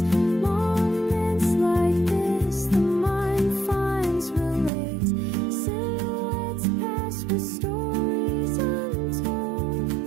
Moments like this, the mind finds relates. Silhouettes pass with stories untold,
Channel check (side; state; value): left; drops out; at 4.7 s